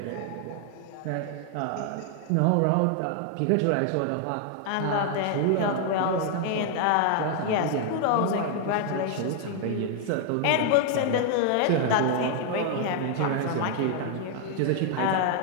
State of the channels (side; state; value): both; different; correlation 0.00